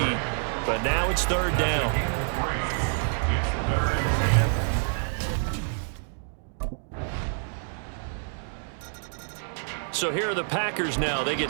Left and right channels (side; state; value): left; silent; 60 dB below the other